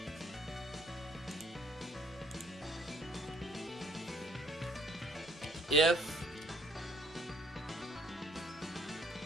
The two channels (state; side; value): normal; both; correlation 0.64